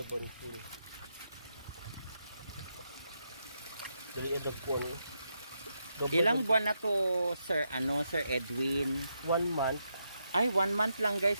Dili edagpon. Ilang buwan na to, Sir Edwin? 1 month. Ay, 1 month lang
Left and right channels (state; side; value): inverted; both; correlation -0.82